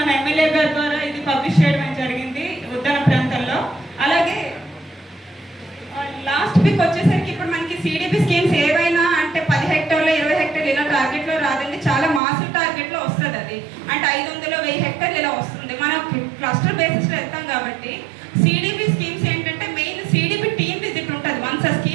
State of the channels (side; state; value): left; drops out; at 12.2 s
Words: ఎమ్మెల్యే గారి ద్వారా ఇది పబ్లిష్ చేయడం జరిగింది ఉద్యాన ప్రాంతాల్లో. అలాగే లాస్ట్ వీక్ వచ్చేసరికి ఇప్పుడు మనకి సిడిపి స్కీమ్స్ ఏవైనా అంటే 10 హెక్టార్లు 20 హెక్టార్లు ఇలా టార్గెట్లో రాదండి. చాలా మాసివ్ టార్గెట్లో వస్తుంది అది. అంటే 500 1000 హెక్టార్లు ఇలా వస్తుంది. మనం క్లస్టర్ బేసిస్లో వెళ్తాం కాబట్టి సిడిపి స్కీమ్స్ ఏంటంటే మెయిన్ సిడిపి టీమ్ విజిట్ ఉంటుంది. వన్స్ ఆ